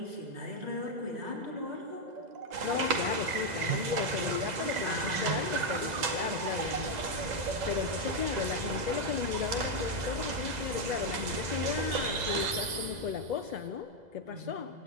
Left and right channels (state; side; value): late; left; 2.0 ms